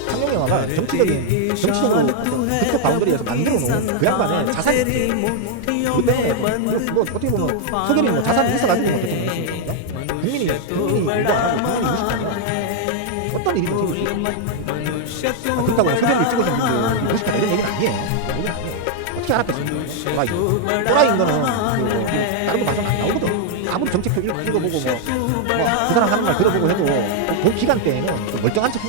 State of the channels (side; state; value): both; different; correlation 0.00